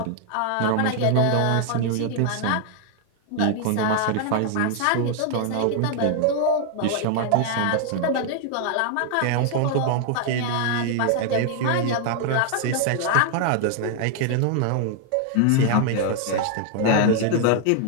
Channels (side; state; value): both; different; correlation 0.00